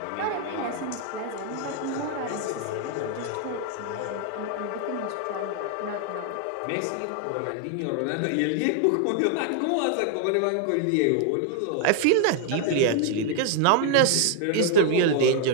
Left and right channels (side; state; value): both; different; correlation 0.00